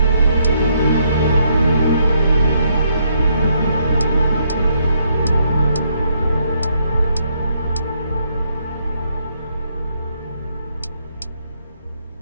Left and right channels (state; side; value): inverted; both; correlation -0.73